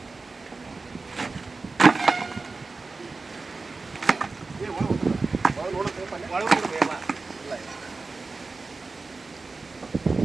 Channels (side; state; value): left; quieter; 3.9 dB